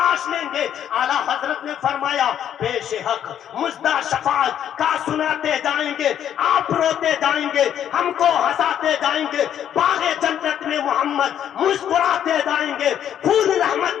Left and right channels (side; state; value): right; quieter; 9.9 dB